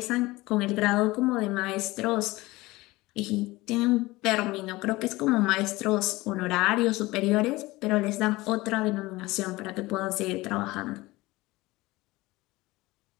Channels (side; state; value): right; quieter; 20.3 dB